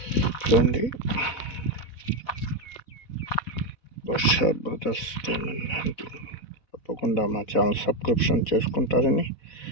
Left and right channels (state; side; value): late; right; 4.1 ms